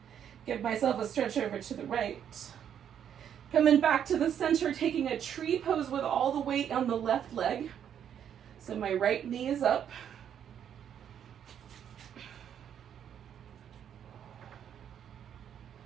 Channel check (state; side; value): quieter; left; 9.1 dB